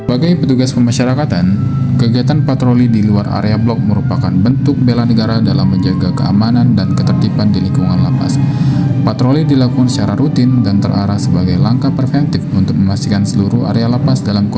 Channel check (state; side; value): identical; both; correlation 1.00